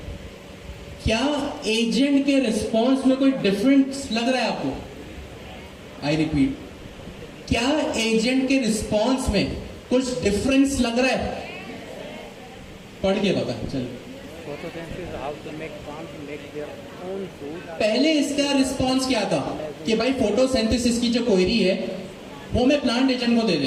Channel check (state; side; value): identical; both; correlation 1.00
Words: क्या एजेंट के रिस्पॉन्स में कोई डिफरेंस लग रहा है आपको? आई रिपीट, क्या एजेंट के रिस्पॉन्स में कुछ डिफरेंस लग रहा है? पढ़ के बता, चलिए। पहले इसका रिस्पॉन्स क्या था कि भाई फोटोसिंथेसिस की जो क्वेरी है वो मैं प्लांट एजेंट को दे